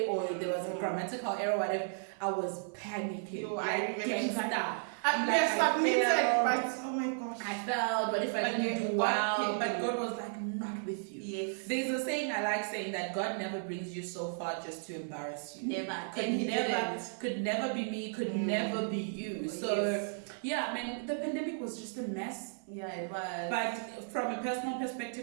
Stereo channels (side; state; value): left; silent; 55 dB below the other